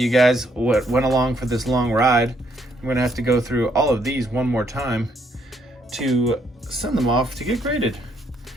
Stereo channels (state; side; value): normal; both; correlation 0.72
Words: guys went along for this long ride. I'm gonna have to go through all of these one more time to send them off to get graded.